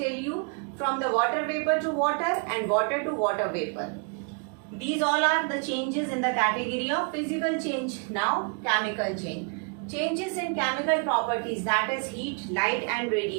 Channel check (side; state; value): left; quieter; 37.6 dB